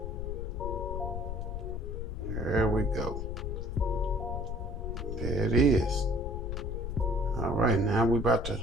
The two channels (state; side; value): noise; left; rumble, 4 dB below the sound